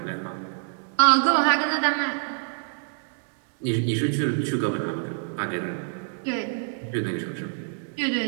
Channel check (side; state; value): left; silent; 61 dB below the other